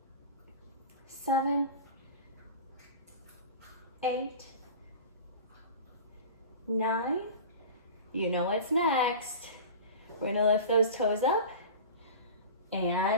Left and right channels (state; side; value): inverted; both; correlation -0.34